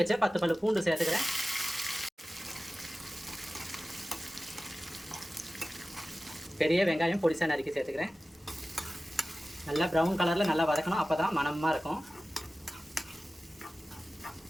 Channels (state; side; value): normal; both; correlation 0.96